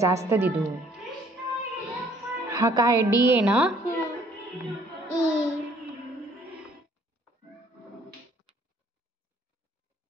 असतं दिदू. हा काय डी आहे ना?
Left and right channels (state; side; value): normal; both; correlation 0.61